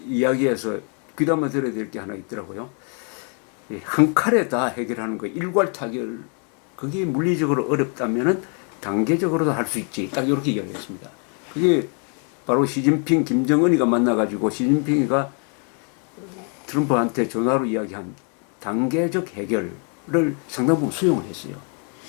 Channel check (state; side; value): quieter; right; 40.0 dB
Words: 이야기에서 귀담아 들어야 될 게 하나 있더라고요. 한 칼에 다 해결하는 거, 일괄 타결, 그게 물리적으로 어렵다면은 단계적으로도 할 수 있지. 딱 이렇게 이야기했습니다. 그게 바로 시진핑, 김정은이가 만나가지고 시진핑이가 트럼프한테 전화로 이야기한 단계적 해결을 상당 부분 수용을 했어요.